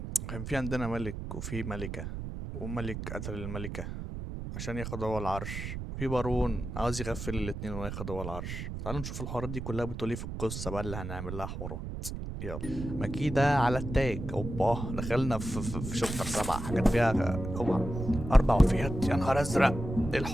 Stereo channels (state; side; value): noise; right; rumble, 7 dB below the sound